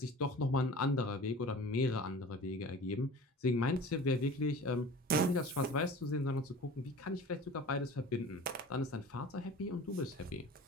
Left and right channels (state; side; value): normal; both; correlation 0.40